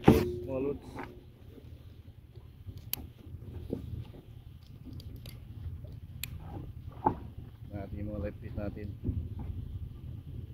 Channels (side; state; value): both; identical; correlation 1.00